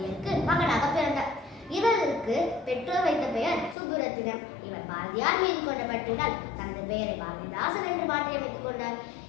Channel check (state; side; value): drops out; right; at 3.8 s